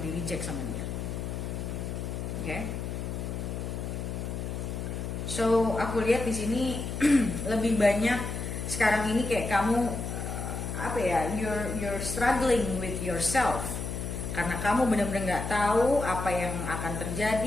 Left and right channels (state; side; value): noise; left; hum, 4 dB below the sound